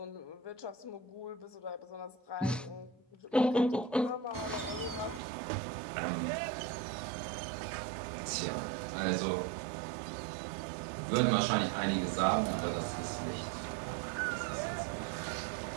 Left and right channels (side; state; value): left; drops out; at 5.2 s